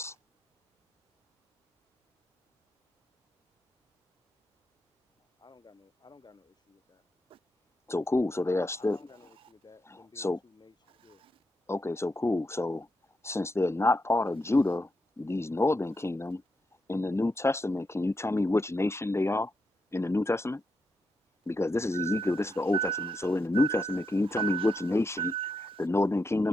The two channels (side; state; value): both; normal; correlation 0.84